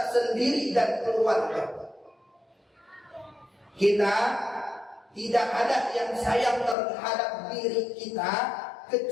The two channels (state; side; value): drops out; right; at 6.8 s